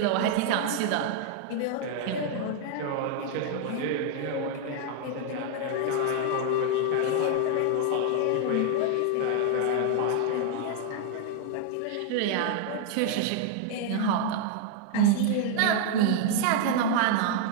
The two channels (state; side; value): different; both; correlation 0.00